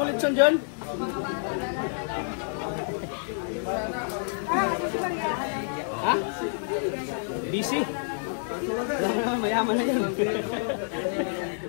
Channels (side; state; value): right; silent; digital silence